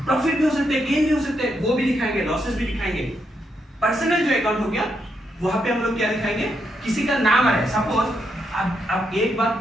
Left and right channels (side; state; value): both; normal; correlation 0.80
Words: भी हो सकते हैं, गेन भी हो सकते हैं, वो भी दिखाएंगे, लॉसेस भी दिखाएंगे। पर्सनल जो अकाउंट हो गया वहां पे हम लोग क्या दिखाएंगे, किसी का नाम है, सपोज अब एक बात